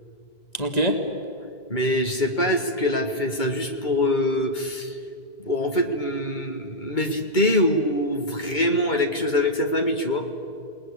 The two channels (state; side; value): late; right; 2.2 ms